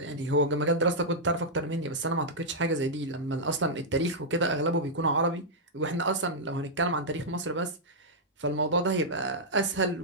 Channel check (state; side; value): normal; both; correlation -0.08